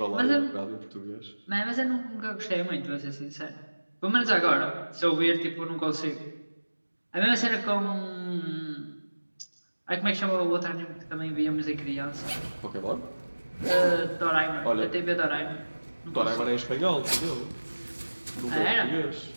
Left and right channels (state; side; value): inverted; both; correlation -1.00